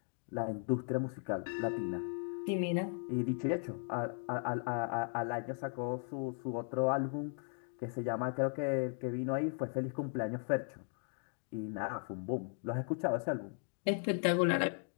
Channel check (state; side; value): silent; right; 53 dB below the other